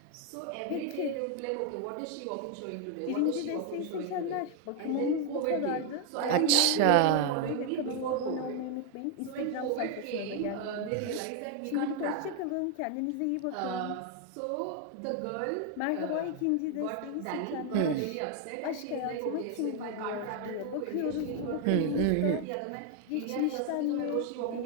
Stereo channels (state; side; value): different; both; correlation 0.01